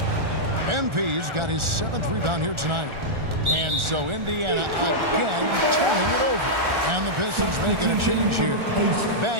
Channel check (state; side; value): late; left; 1.4 ms